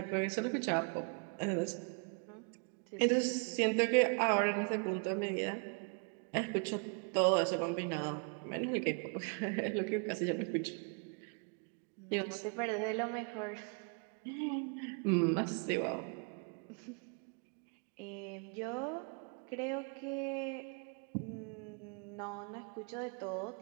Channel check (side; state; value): left; quieter; 37.9 dB